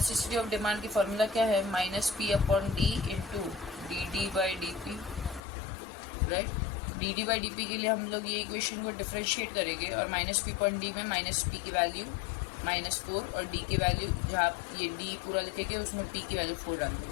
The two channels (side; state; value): right; drops out; at 5.4 s